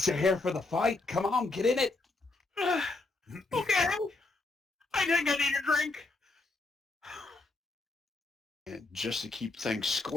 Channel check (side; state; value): right; quieter; 3.3 dB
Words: you're here for the fight. Come on, get in it. Okay. I think I need a drink. And just to keep things